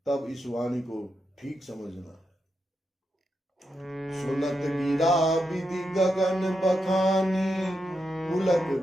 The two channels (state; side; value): normal; both; correlation 0.85